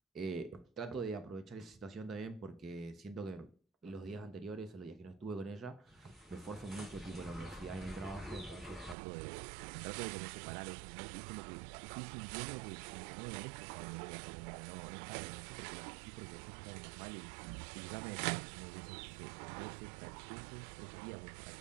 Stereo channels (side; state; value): left; drops out; at 9.0 s